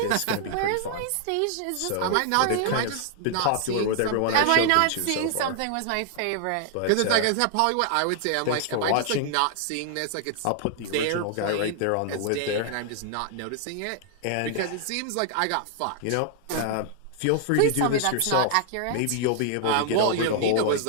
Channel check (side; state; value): both; different; correlation 0.00